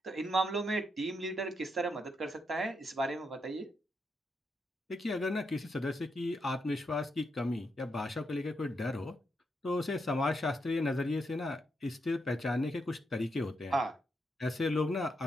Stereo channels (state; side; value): normal; both; correlation 0.81